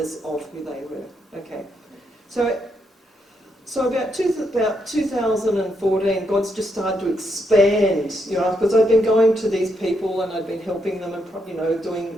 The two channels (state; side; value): normal; both; correlation 0.79